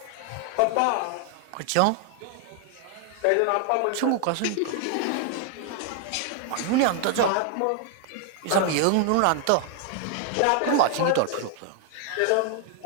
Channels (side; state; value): both; different; correlation 0.00